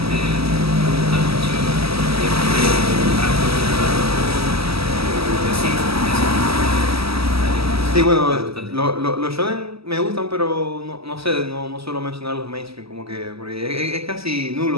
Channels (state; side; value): late; left; 0.76 ms